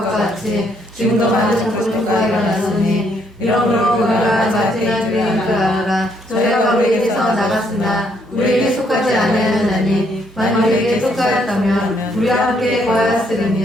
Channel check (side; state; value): both; normal; correlation 0.71